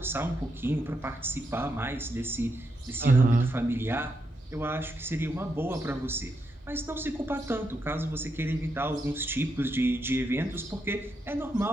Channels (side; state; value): both; normal; correlation 0.82